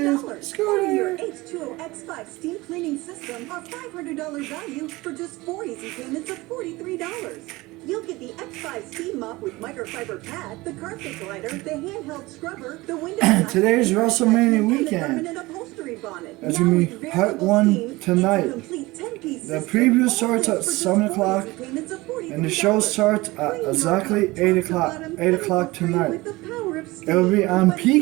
$200. Scooter. Your H2O X5 steam cleaning system, our $500 value for just 4 easy payments of $43. You'll get the X5 steam mop with microfiber pad, the carpet glider, the handheld scrubber, the window. Today's WrestleMania weekend. That's gonna be part 1 tonight. The preview starts at 7 o'clock, and the show starts at exactly 8 o'clock. 8 o'clock tonight. It'll be on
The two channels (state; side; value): quieter; left; 21.1 dB